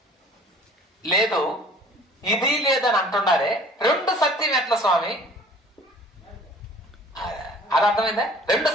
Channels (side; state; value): both; normal; correlation 0.50